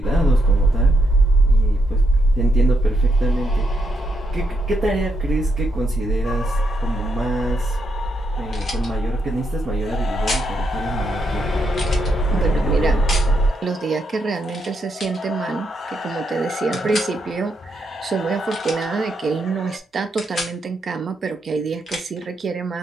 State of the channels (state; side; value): normal; both; correlation 0.79